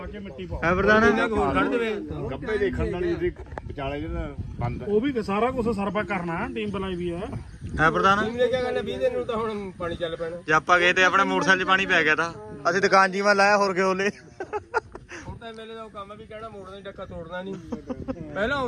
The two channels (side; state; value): both; identical; correlation 1.00